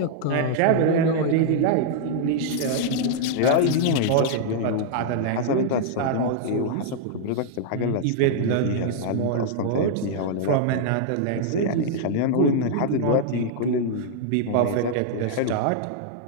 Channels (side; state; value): both; different; correlation -0.01